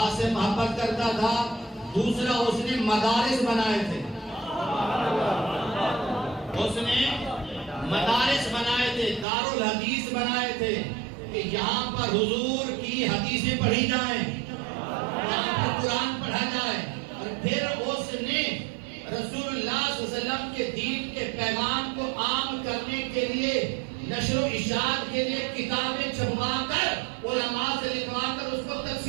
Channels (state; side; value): drops out; left; at 9.2 s